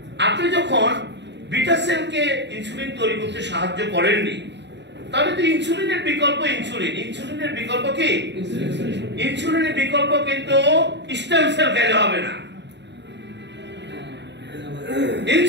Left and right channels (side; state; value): left; late; 0.51 ms